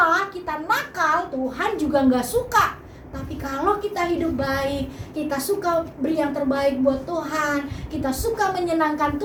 kita nakal, Tuhan juga gak suka. Tapi kalau kita hidup baik, kita suka beri yang terbaik buat Tuhan, kita suka menyenangkan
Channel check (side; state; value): both; identical; correlation 1.00